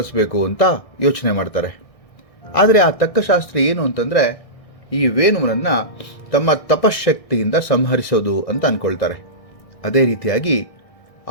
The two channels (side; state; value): right; late; 1.6 ms